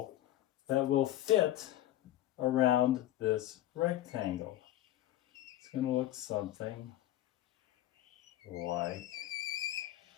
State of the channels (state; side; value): quieter; right; 13.8 dB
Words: that will fit around this rectangle. It's going to look something like